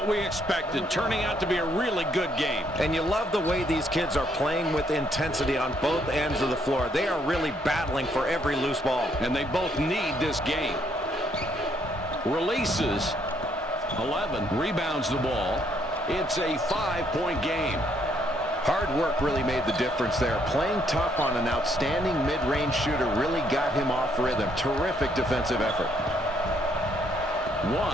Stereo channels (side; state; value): both; normal; correlation 0.70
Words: we expected, turning out to be a really good game. And you love the way these kids are playing with intensity on both ends of the floor. They are really battling for every loose ball. And they both need this game. Releases. 11 rebounds the ball. It's a 5-point game. Hard work really made the difference there. Playing tough on an outstanding mid-range shooter really got him off rhythm. Terrific defensive effort.